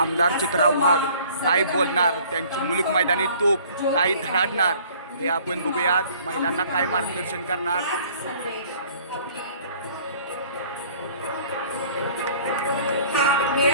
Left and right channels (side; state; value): both; inverted; correlation -0.53